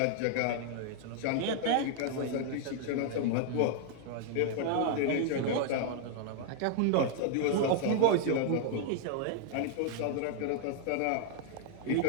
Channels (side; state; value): both; different; correlation 0.00